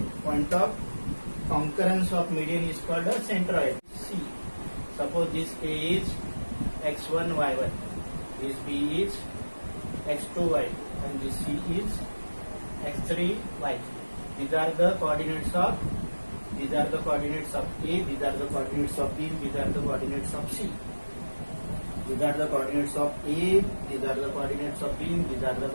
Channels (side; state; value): both; inverted; correlation -1.00